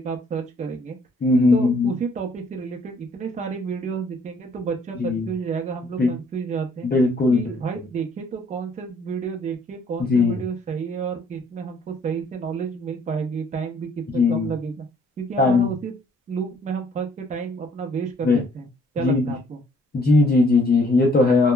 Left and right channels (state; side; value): normal; both; correlation 0.63